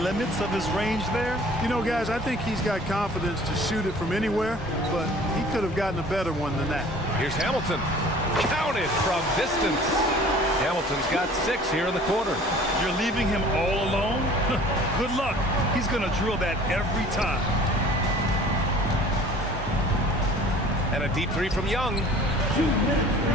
limits of his range there? You know, guys, I think he's got confidence to shoot it from anywhere, but he could have gotten a better one than that. Here's Hamilton. Counted from distance. Hamilton's got 6 here in the quarter. You're leaving him all alone? Good luck. He's going to drill that every time. And a deep three from Young. 2 minutes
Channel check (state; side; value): normal; both; correlation 0.48